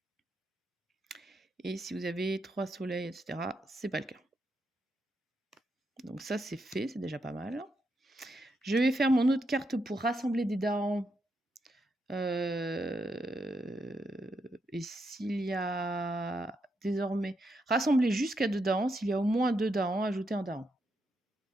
Et si vous avez 3 soleils, etc., c'est pas le cas. Donc ça, c'est fait, c'est déjà pas mal. Je vais faire mon autre carte pour rassembler des Dahans. Et s'il y a désormais... Rassembler jusqu'à 2 Dahans. S'il y a au moins 2 Dahans, ajouter un Dahan.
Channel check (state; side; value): normal; both; correlation 0.81